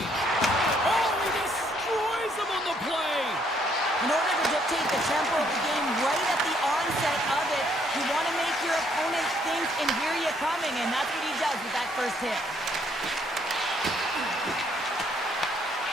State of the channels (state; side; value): normal; both; correlation 0.68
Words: Oh, he destroys them on the play. In order to dictate the tempo of the game right at the onset of it, you want to make your opponent think and hear you coming, and that's what he does with that first hit.